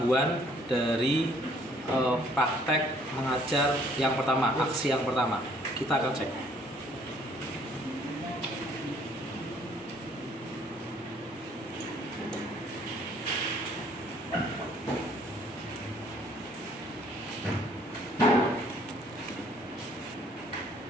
dari praktek mengajar yang pertama, aksi yang pertama. Kita akan cek.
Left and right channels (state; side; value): normal; both; correlation 0.61